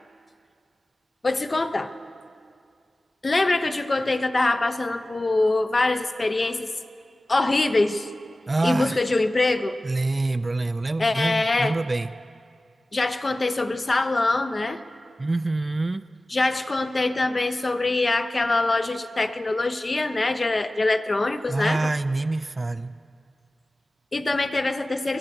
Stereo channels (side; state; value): both; normal; correlation 0.96